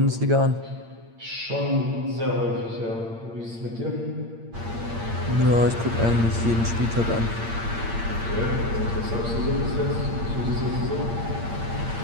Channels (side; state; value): left; late; 8.7 ms